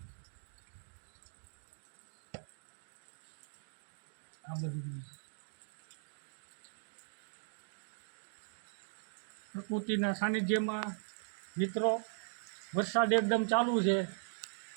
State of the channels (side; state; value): left; silent; digital silence